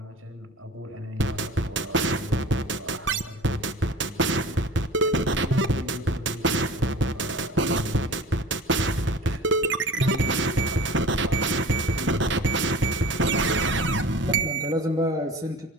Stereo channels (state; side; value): normal; both; correlation 0.40